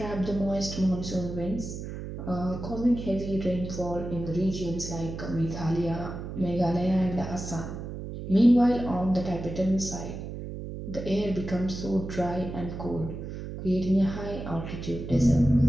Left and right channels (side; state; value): right; noise; hum, 8 dB below the sound